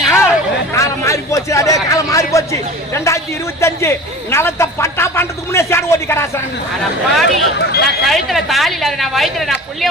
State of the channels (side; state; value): both; normal; correlation 0.38